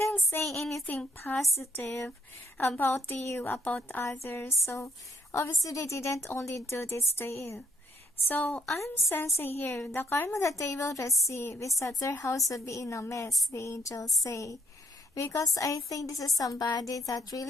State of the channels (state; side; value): normal; both; correlation 0.67